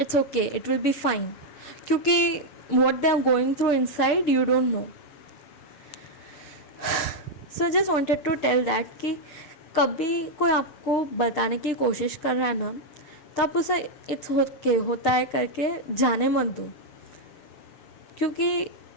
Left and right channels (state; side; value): late; right; 6.6 ms